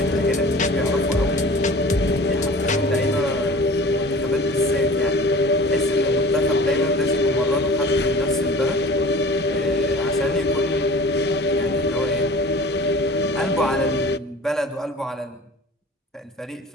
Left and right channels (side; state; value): both; normal; correlation 0.42